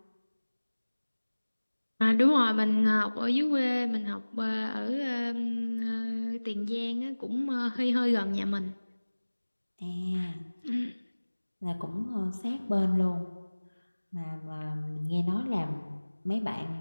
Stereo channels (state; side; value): inverted; both; correlation -1.00